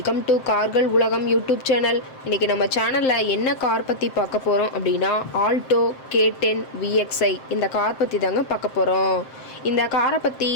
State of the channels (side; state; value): right; late; 7.6 ms